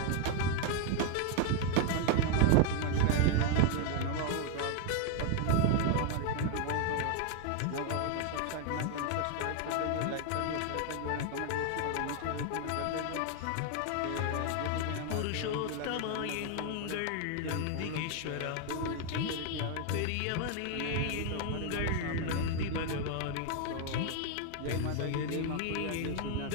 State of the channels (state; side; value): different; both; correlation 0.00